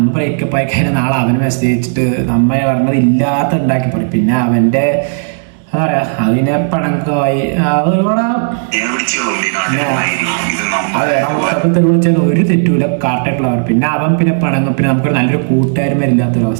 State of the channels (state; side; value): silent; left; digital silence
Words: ബ്രേക്കപ്പ് ആയി കഴിഞ്ഞാൽ നാളെ അവന് മെസ്സേജ് അയച്ചിട്ട് നമ്മ പറഞ്ഞത് ഇല്ലാത്ത ഉണ്ടാക്കി പറയും. പിന്നെ അവന്റെ എന്താ പറയാ, അതിനെ പണക്കമായി മുത്തപ്പത്തിൽ വിളിച്ചാൽ ഒരു തെറ്റൂല, കാട്ടായിട്ടുള്ളവർ. പിന്നെ അവൻ പിന്നെ പണങ്ങും. പിന്നെ നമുക്ക് നല്ലൊരു